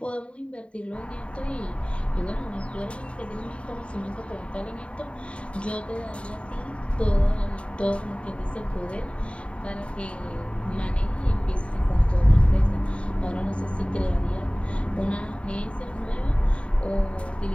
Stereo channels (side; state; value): right; late; 0.061 ms